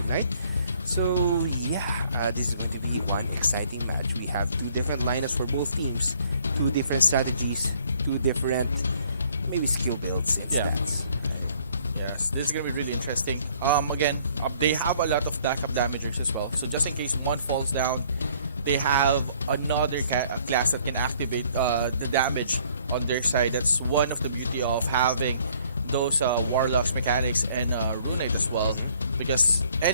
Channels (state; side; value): inverted; both; correlation -0.61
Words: Knight. So yeah, this is going to be one exciting match. We have two different lineups for both teams, two different strategies, two different maybe skill builds and stats. Right? Yes, this is gonna be really interesting. Again, they have a lot of backup damagers as well. So just in case one falls down, they have another class that can activate the damage on their side. That's one of the beauty of having those Warlocks, Mechanics, and Rune Knight as well. Because